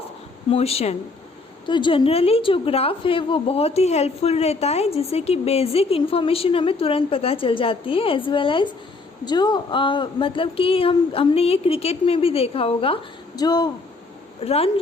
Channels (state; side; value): quieter; right; 3.7 dB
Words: मोशन। तो जनरली जो ग्राफ है वो बहुत ही हेल्पफुल रहता है, जिससे कि बेसिक इन्फॉर्मेशन हमें तुरंत पता चल जाती है, एज वेल एज जो मतलब कि हमने ये क्रिकेट में भी देखा होगा, जो रन